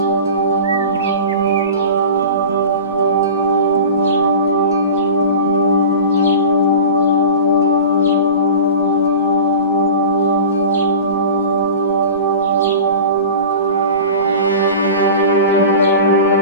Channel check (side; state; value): both; inverted; correlation -0.35